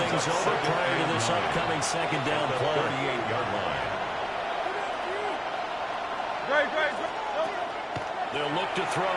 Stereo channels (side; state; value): both; identical; correlation 1.00